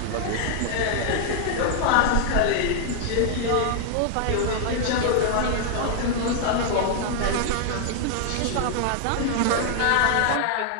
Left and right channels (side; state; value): both; different; correlation -0.01